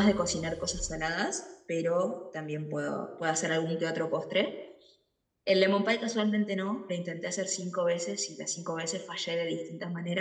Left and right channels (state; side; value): identical; both; correlation 1.00